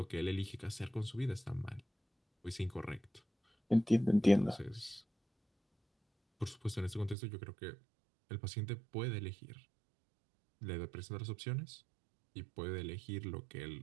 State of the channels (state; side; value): drops out; left; at 7.2 s